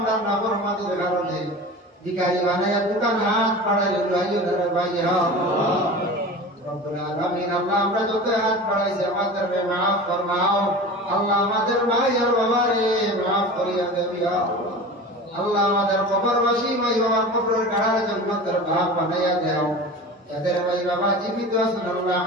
নাফরমানির কারণে ভিখারি বানায়া দোকান হাত বাড়াইলে লইয়া ধরে ভাইয়া আল্লাহ রব্বুল আলামিন। আল্লাহ আমরা যত হাত বাড়াইছি আমাদের মাফ ফরমাও আল্লাহ, আমাদের ভাই আর বাবারে মাফ করিয়া দেবি আল্লাহ। আল্লাহ আমাদের কবরবাসী ভাই বাবার কবরের গাড়ার জান্নাতের ভাগ বানাইয়া দাও। যাদের ভাই বাবা জীবিত আছেন আল্লাহ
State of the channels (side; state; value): both; normal; correlation 0.34